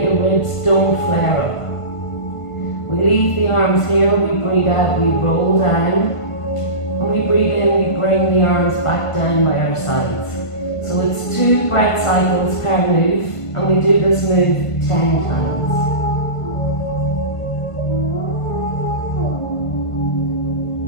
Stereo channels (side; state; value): right; late; 1.5 ms